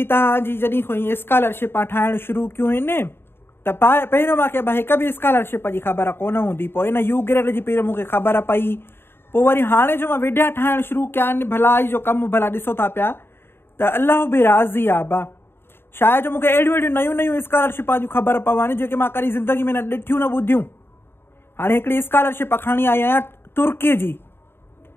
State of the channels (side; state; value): right; late; 0.11 ms